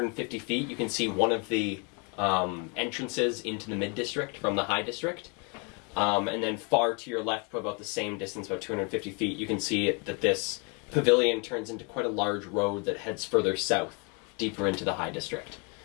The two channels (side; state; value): right; quieter; 34.0 dB